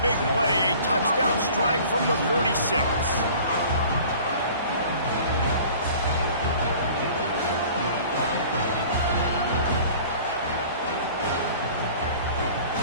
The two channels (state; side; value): inverted; both; correlation -0.47